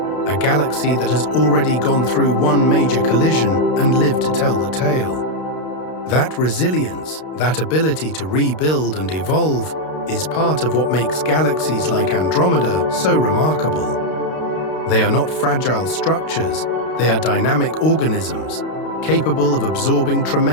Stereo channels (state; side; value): late; right; 32 ms